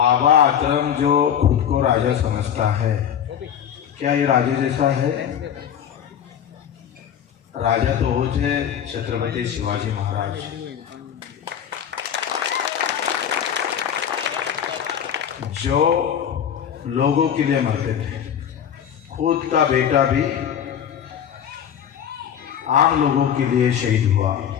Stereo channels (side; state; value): right; quieter; 8.9 dB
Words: आतरम जो खुद को राजा समझता है, क्या ये राजा जैसा है? राजा तो वो थे छत्रपति शिवाजी महाराज, जो लोगों के लिए मरते थे। खुद का बेटा भी आम लोगों के लिए शहीद हुआ।